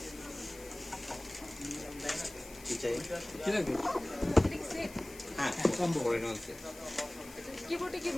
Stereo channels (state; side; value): noise; left; hiss, 18 dB below the sound